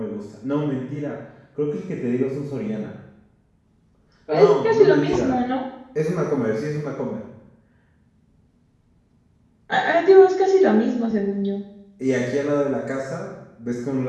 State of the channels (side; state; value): both; identical; correlation 1.00